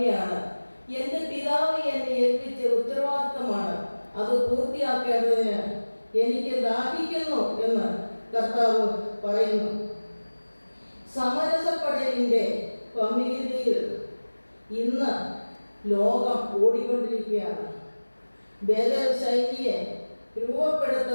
എൻ്റെ പിതാവ് എന്നെ ഏൽപ്പിച്ച ഉത്തരവാദിത്തമാണ്. അത് പൂർത്തിയാക്കേണ്ടതിന് എനിക്ക് ദാഹിക്കുന്നു എന്ന് കർത്താവ് പറയുന്നു. സമരസപ്പെടലിൻ്റെ പമിതിയിൽ ഇന്ന് ലോകം ഓടിക്കൊണ്ടിരിക്കുകയാണ്. ബദൽ ശൈലിയെ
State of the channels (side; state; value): both; inverted; correlation -1.00